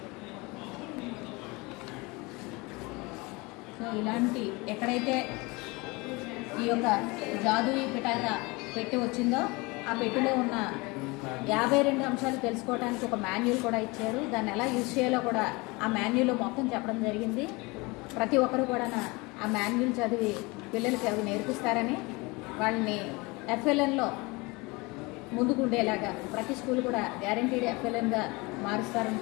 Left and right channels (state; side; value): quieter; right; 25.3 dB